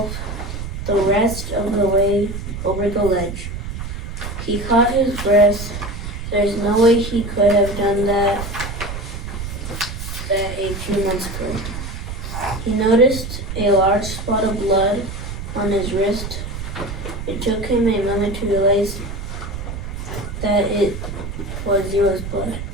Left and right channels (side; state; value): right; noise; rumble, 7 dB below the sound